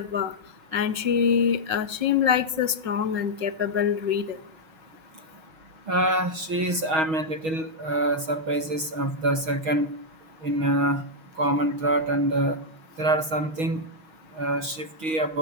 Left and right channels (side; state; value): left; late; 6.3 ms